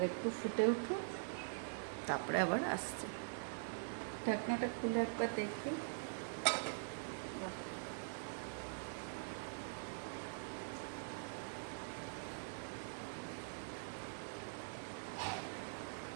একটু ফুটে উঠুক, তারপরে আবার আসছে। ঢাকনাটা খুলে একবার দেখি।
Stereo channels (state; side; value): silent; left; digital silence